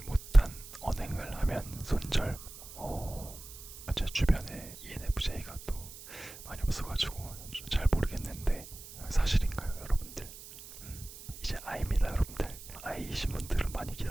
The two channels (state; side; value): noise; right; hiss, 15 dB below the sound